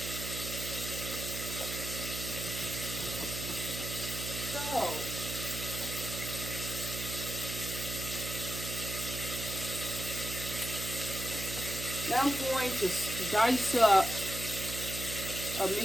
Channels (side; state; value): right; noise; hum, 6 dB below the sound